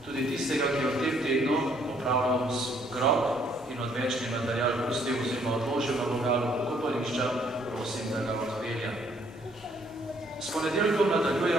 Tudi tistega, ki je v tem tednu popravljal grob in odvečni material pustil oziroma odložil na vogalu pokopališča, prosim, da ga odpelja. S ponedeljkom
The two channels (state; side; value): normal; both; correlation 0.66